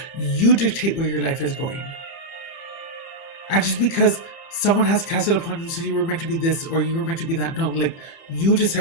You dictate where your life is going. And just because someone has cast it upon you, so you were meant to be this or you were meant to be that, no, like you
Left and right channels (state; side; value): late; right; 30 ms